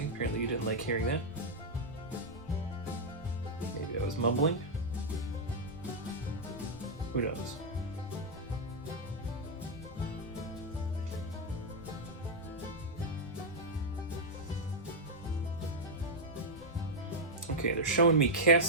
apparently you didn't like hearing that. Maybe I was mumbling. Who knows? Okay, they're showing me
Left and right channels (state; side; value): normal; both; correlation -0.03